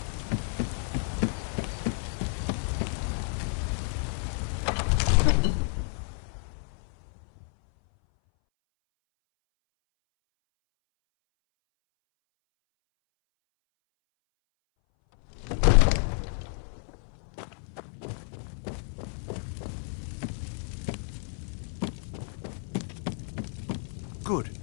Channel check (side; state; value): right; silent; 58 dB below the other